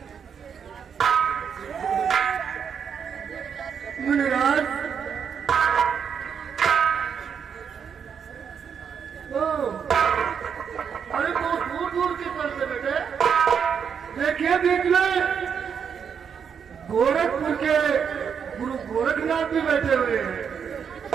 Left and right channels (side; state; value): left; quieter; 7.1 dB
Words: मुनिराज, अरे बहुत दूर दूर की तरफ से बैठे। देखिए बीच में गोरखपुर के गुरु गोरखनाथ भी बैठे हुए हैं।